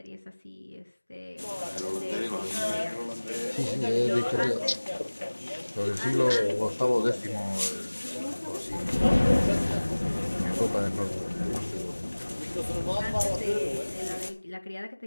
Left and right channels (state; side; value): inverted; both; correlation -1.00